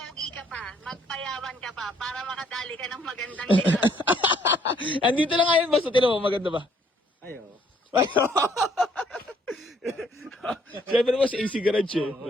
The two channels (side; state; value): both; normal; correlation 0.65